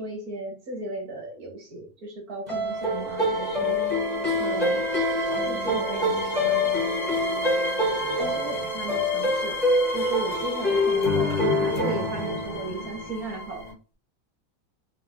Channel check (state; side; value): late; left; 2.0 ms